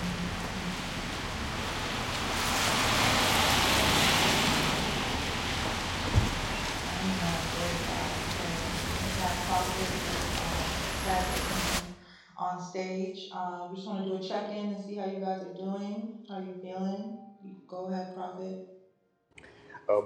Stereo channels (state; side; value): identical; both; correlation 1.00